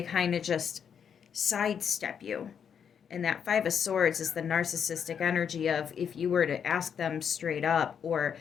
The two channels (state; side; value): quieter; right; 7.6 dB